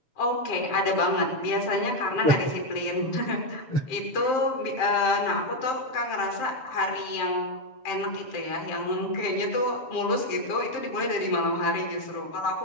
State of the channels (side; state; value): right; late; 7.0 ms